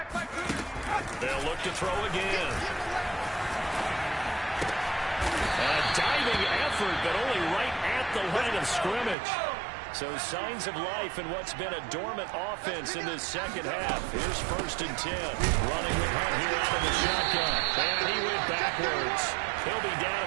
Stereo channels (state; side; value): drops out; left; at 9.2 s